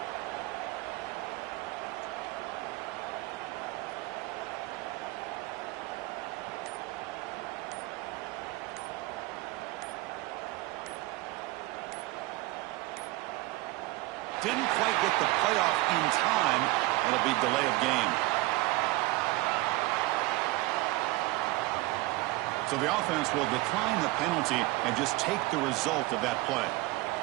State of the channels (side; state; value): left; quieter; 20.3 dB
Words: Didn't quite get the playoff in time. It'll be delay of game. So the offense will decline the penalty and just take the result of that play.